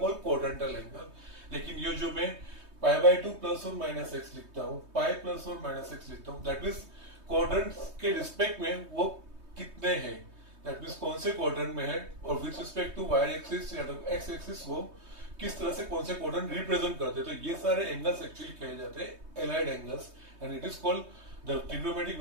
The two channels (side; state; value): left; late; 3.2 ms